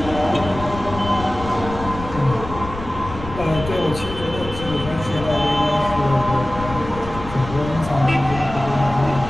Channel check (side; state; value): left; noise; rumble, 11 dB below the sound